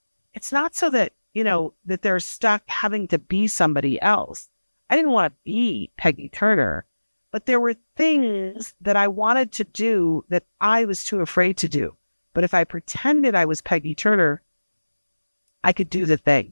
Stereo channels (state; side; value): inverted; both; correlation -1.00